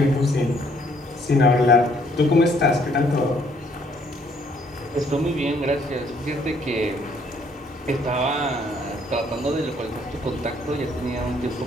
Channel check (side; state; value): both; normal; correlation 0.65